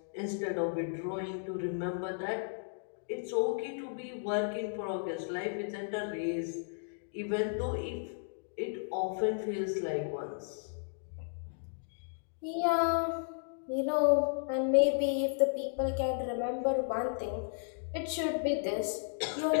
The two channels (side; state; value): right; silent; digital silence